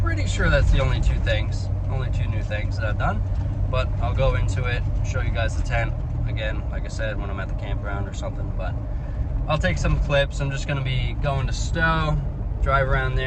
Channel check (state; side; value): identical; both; correlation 1.00